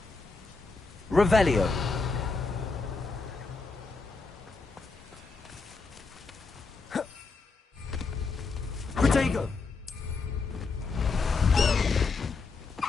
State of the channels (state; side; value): quieter; right; 4.2 dB